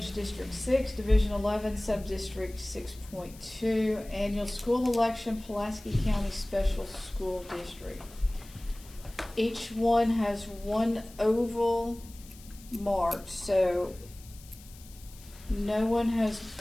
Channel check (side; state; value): left; noise; hiss, 21 dB below the sound